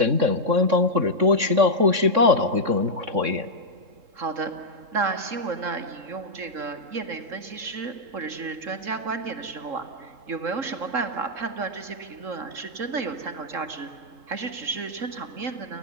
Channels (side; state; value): left; late; 3.7 ms